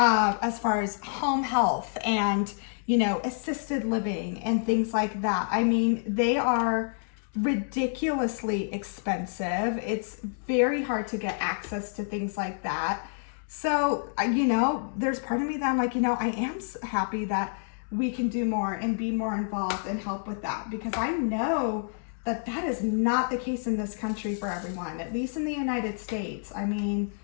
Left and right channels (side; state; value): right; silent; digital silence